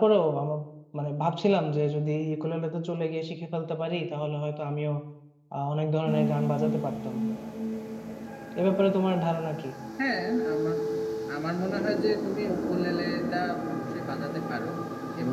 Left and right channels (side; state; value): both; identical; correlation 1.00